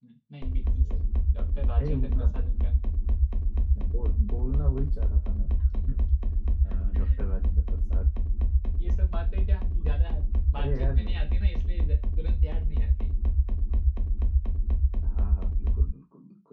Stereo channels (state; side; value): identical; both; correlation 1.00